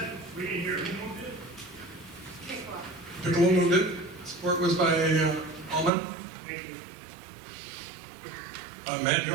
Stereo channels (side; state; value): left; drops out; at 5.9 s